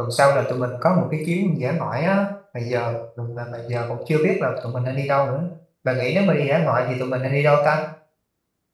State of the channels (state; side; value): identical; both; correlation 1.00